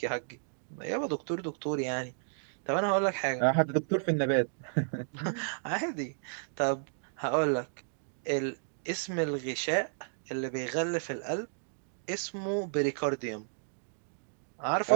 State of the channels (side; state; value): left; silent; digital silence